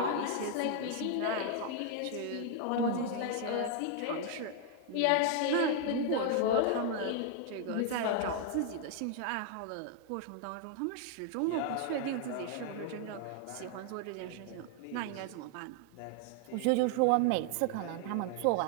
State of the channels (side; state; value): both; different; correlation 0.00